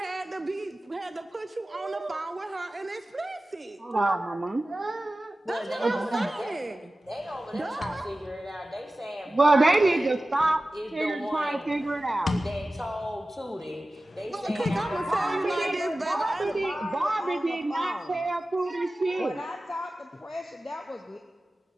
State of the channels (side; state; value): both; normal; correlation 0.96